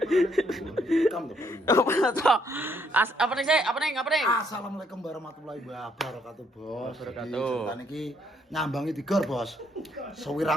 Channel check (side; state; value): both; normal; correlation 0.70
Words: Kam to. Apa nih sih? Apa nih? Assalamualaikum warahmatullahi wabarakatuh, Bos. Wabarakatuh. Ceritane iki nyambangi Tigor, Bos.